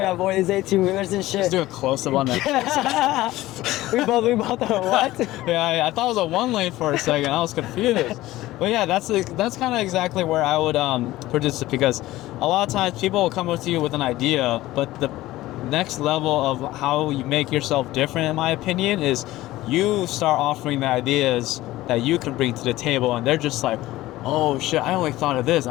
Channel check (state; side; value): quieter; right; 16.8 dB